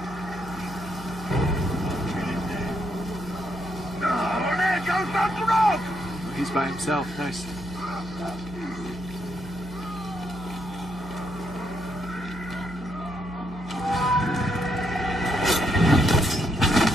He's by himself. Nice.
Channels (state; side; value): normal; both; correlation 0.77